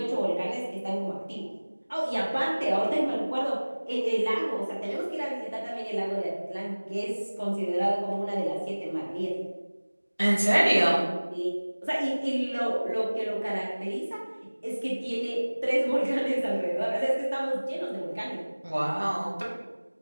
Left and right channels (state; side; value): inverted; both; correlation -1.00